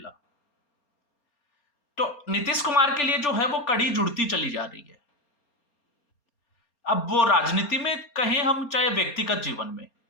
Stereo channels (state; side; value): late; right; 4.3 ms